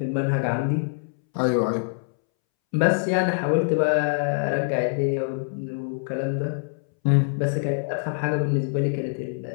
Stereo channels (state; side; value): silent; right; 62 dB below the other